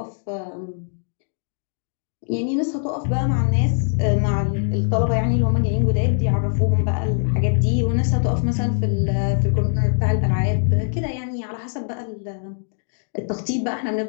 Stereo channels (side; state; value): right; silent; digital silence